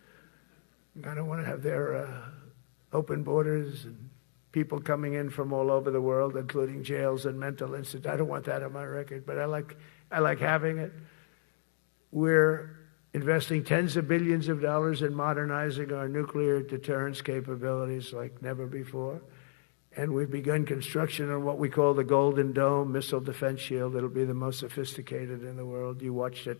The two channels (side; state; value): right; silent; digital silence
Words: I don't want to have their open borders and people coming in from all over the world, including jails and mental institutes. I don't want that on my record, but I like having it. We're investing tens of billions of dollars in modernizing our nuclear deterrence capabilities like never before. And we've begun construction on what we call the Golden Dome missile defense shield. It'll be the most sophisticated in the world. You watched